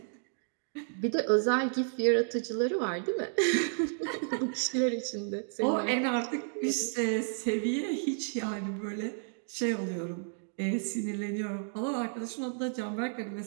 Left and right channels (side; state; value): left; silent; digital silence